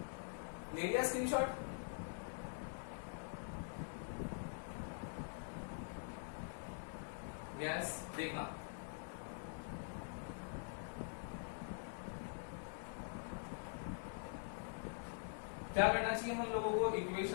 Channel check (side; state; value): right; silent; digital silence